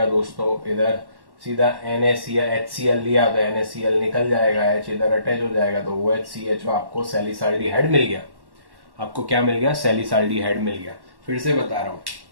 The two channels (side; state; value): left; late; 1.1 ms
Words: दोस्तों? इधर सीधा NaCl HCl लिया तो NaCl निकल जाएगा, H इधर अटैच हो जाएगा, तो OHCHO आपको सैलिसाल्डिहाइड मिल गया। आपको क्या मिल गया? सैलिसाल्डिहाइड मिल गया। फिर से बता रहा हूं,